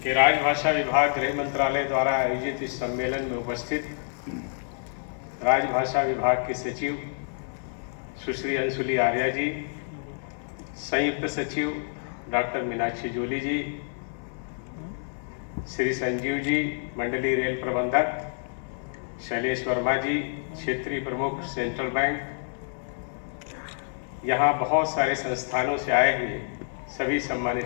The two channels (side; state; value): right; silent; 60 dB below the other